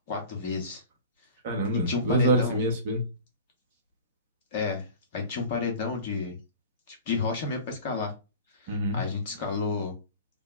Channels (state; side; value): inverted; both; correlation -0.38